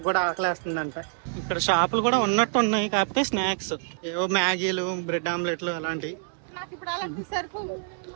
కూడా ఆకలేస్తుందంట. ఇక్కడ షాపులు కూడా ఉన్నట్టు ఉన్నాయి, కాకపోతే స్నాక్స్ ఏవో మ్యాగీలు, బ్రెడ్ ఆమ్లెట్లు అలాంటివి.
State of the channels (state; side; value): silent; left; 60 dB below the other